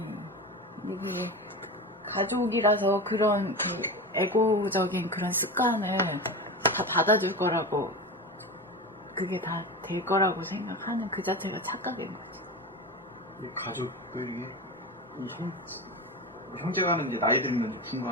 이게 가족이라서 그런 그 에고적인 그런 습관을 다 받아줄 거라고, 그게 다 될 거라고 생각하는 그 자체가 착각인 거지. 이 가족들이 이 형제간은 이제 나이 들면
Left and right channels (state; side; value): normal; both; correlation 0.25